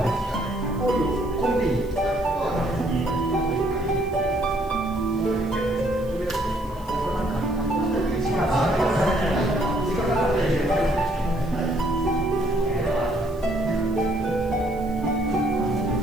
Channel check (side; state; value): right; noise; hiss, 26 dB below the sound